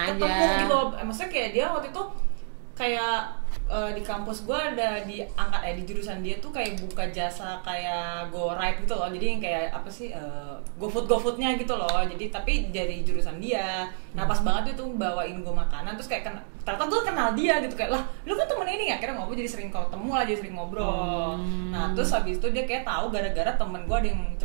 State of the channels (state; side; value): silent; left; digital silence